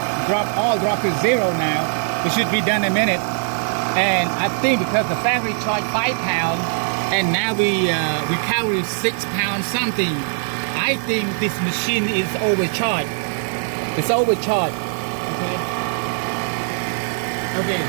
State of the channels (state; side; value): silent; left; 61 dB below the other